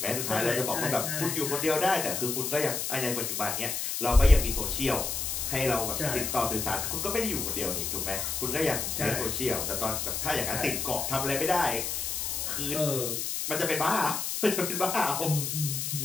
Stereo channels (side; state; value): left; noise; hiss, 2 dB below the sound